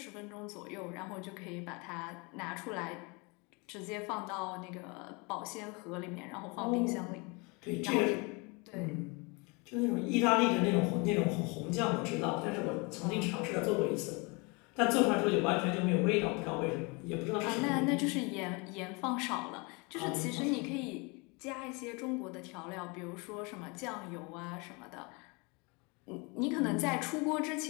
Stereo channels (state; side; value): quieter; right; 29.3 dB